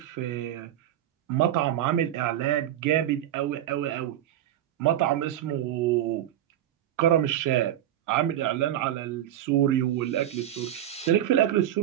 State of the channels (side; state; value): left; quieter; 12.0 dB